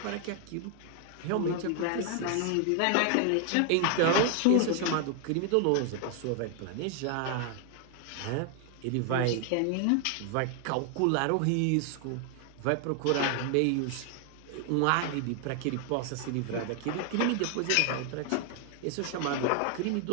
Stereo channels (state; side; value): different; both; correlation 0.00